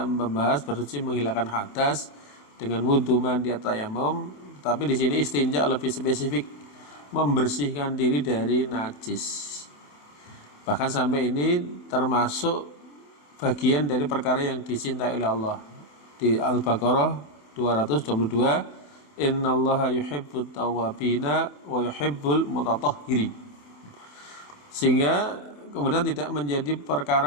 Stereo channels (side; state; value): right; late; 27 ms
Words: membahas bersuci menghilangkan hadas dengan wudu, mandi, tayamum, tapi di sini istinja lebih spesifik, membersihkan diri dari najis. Bahkan sampai ini termasuk bagian dari perkara yang dicintai oleh Allah. Di Al-Baqarah 222, innallaha yuhibbut tawwabina wa yuhibbul mutatahhirin. Sehingga kemudian tidak menjadi